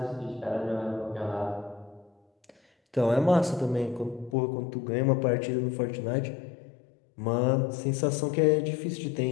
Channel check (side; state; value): right; drops out; at 4.4 s